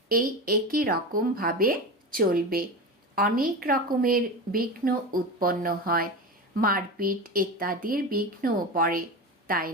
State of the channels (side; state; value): both; normal; correlation 0.24